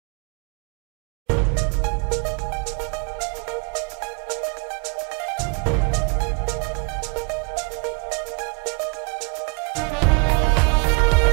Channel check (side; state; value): left; quieter; 34.0 dB